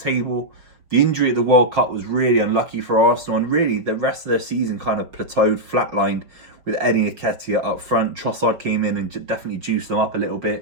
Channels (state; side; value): late; left; 5.5 ms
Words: table. The injury at the World Cup was really unlucky for Arsenal, and really the rest of their season kind of plateaued, flatlined with Eddie Nketiah up front. Trossard came in and definitely juiced them up a little